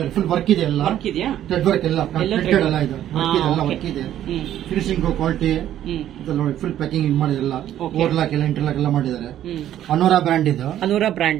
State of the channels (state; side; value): quieter; left; 11.7 dB